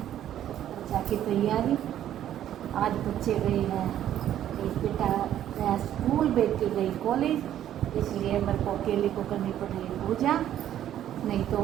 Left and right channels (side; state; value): left; quieter; 11.3 dB